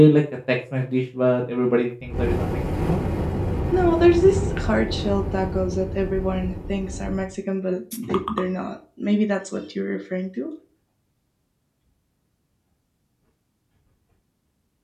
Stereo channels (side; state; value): both; identical; correlation 1.00